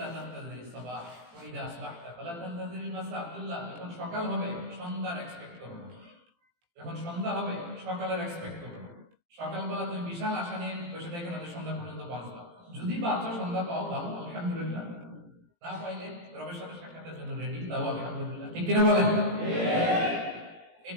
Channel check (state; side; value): late; left; 17 ms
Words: তানতাযিরিস সাবাহ ওয়াইদা আসবাহতা ফালা তানতাযিরিল মাসা। আব্দুল্লাহ, যখন সকাল হবে সন্ধ্যার এক্সপেক্ট করো না, যখন সন্ধ্যা হবে সকালের এক্সপেক্ট করো। সকালবেলা তুমি বিশাল আশা নিয়ে বসে থাকো না যে সন্ধ্যা পর্যন্ত বাঁচবা। যদি বাঁচো, সন্ধ্যা পাও, ভালো, আলহামদুলিল্লাহ। না পাইলে রবের সাথে সাক্ষাতের জন্য রেডি, তাও আলহামদুলিল্লাহ। ঠিক কিনা বলেন?